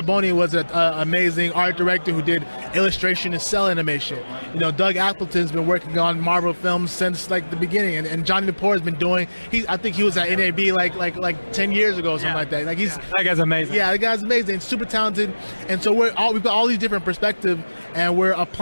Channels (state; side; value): inverted; both; correlation -1.00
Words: was an amazing art director who did illustration and cell animation. You know, Doug Appleton's been working on Marvel films since like the beginning, and Johnny Lepore has been doing. I think he was at NAB like 10 years ago or something like that. Like that guy's amazing. Yeah, the guy's amazing, super talented, and so we've got all these different perspectives, and we're